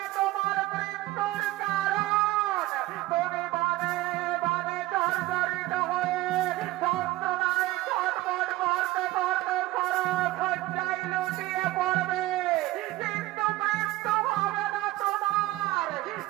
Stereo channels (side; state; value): left; quieter; 17.6 dB